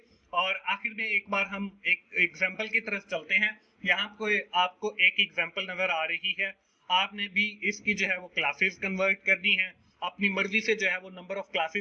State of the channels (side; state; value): both; identical; correlation 1.00